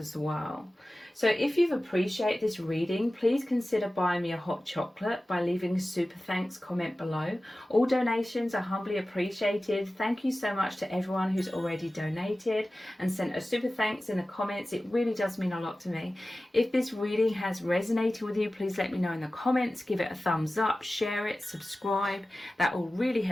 well. So if you've appreciated this reading, please consider buying me a hot chocolate by leaving a super thanks comment below. All donations are humbly appreciated. Thank you so much to everyone who's already donated and sent a super thanks in the comments. It really does mean a lot to me. If this reading has resonated with you, please let me know in the comments. Give it a thumbs up, share it, subscribe. That all really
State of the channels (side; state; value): both; normal; correlation 0.96